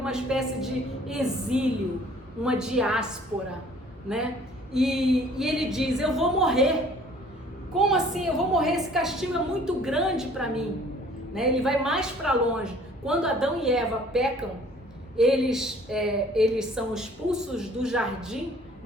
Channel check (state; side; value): normal; both; correlation 0.54